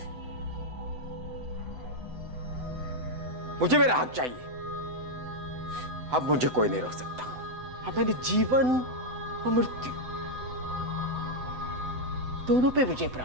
मुझे मेरा हक चाहिए। अब मुझे कोई नहीं रोक सकता। अब मैंने जीवन और मृत्यु दोनों पे विजय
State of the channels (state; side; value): late; left; 7.9 ms